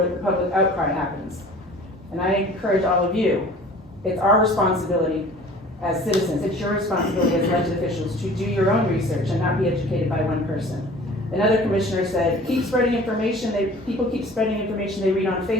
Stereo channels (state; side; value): normal; both; correlation 0.47